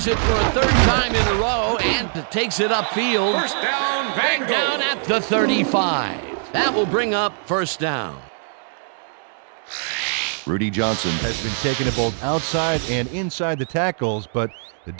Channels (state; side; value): silent; left; digital silence